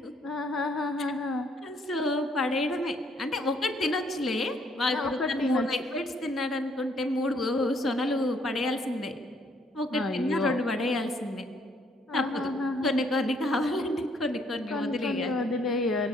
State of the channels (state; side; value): normal; both; correlation 0.67